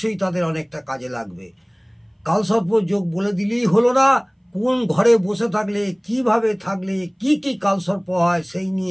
তাদের অনেকটা কাজে লাগবে। কালসর্প যোগ বলে দিলেই হলো না, কোন ঘরে বসে থাকলে, কিভাবে থাকলে কি কি কালসর্প হয় সেই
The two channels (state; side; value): identical; both; correlation 1.00